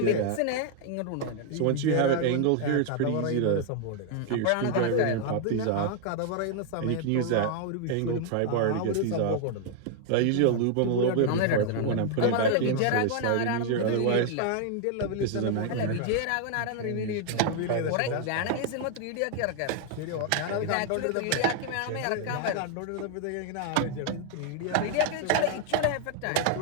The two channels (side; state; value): both; different; correlation 0.00